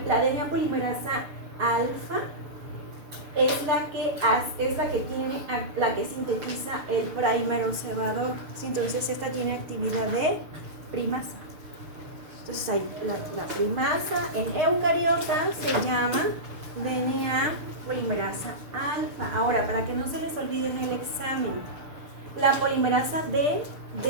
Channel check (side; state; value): left; late; 6.8 ms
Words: la DNA polimerasa alfa, es la que sintetiza el prímero cebador. ¿Sí? Entonces esta tiene actividad de primasa. Entonces hay la primasa en eucariotas se llama DNA polimerasa alfa. Ahora, para que no se les olvide en el examen, la polimerasa D